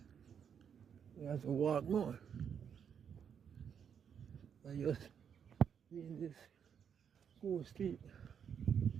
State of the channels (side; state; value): left; quieter; 7.7 dB